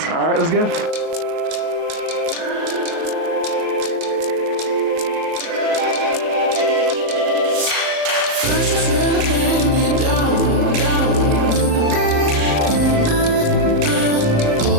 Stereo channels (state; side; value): late; left; 38 ms